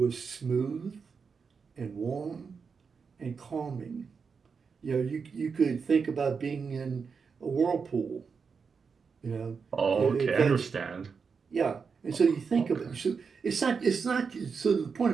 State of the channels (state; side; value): quieter; left; 5.6 dB